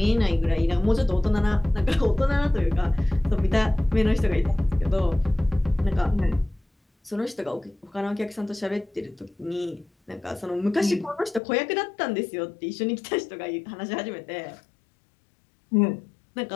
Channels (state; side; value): drops out; right; at 11.4 s